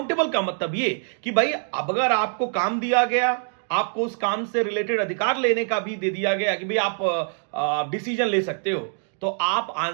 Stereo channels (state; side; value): silent; left; 62 dB below the other